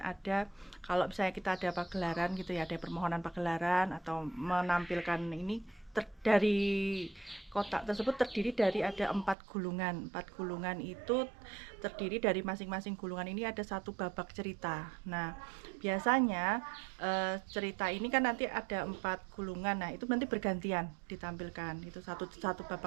kalau misalnya kita ada pagelaran gitu ya, ada permohonan pagelaran atau menampilkan ini dari kotak tersebut terdiri dari ada 4 gulungan. 4 gulungan itu terdiri dari masing-masing gulungan ini ada 1 babak cerita. Nah, biasanya cerita ini kan nanti ada 4 gulungan. Nah, itu nanti bergantian ditampilkan. Itu satu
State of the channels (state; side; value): drops out; left; at 9.3 s